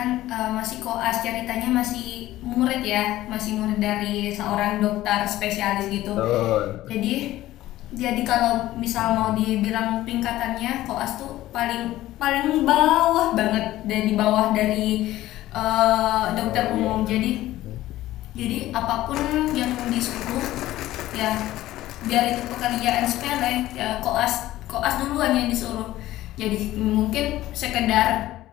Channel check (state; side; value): quieter; right; 15.3 dB